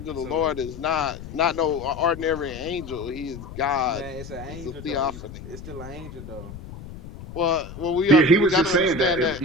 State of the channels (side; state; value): left; noise; rumble, 13 dB below the sound